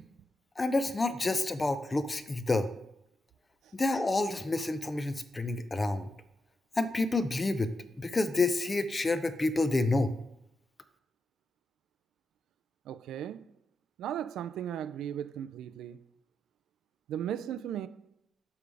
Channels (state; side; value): normal; both; correlation 0.87